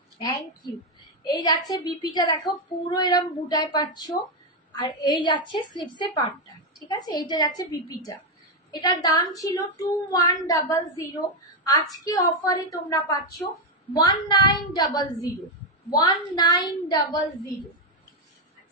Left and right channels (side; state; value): both; normal; correlation 0.04